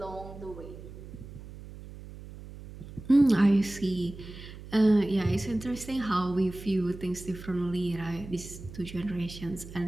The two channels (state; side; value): noise; right; hum, 14 dB below the sound